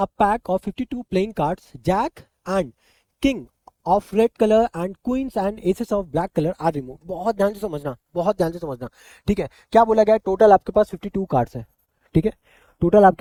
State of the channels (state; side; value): identical; both; correlation 1.00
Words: pack of 52 playing cards, jack and king of red colour and queens and aces of black colour are remove. बहुत ध्यान से समझना, बहुत ध्यान से समझना। ठीक है, क्या बोला गया? टोटल आपके पास 52 कार्ड्स हैं। ठीक है, टोटल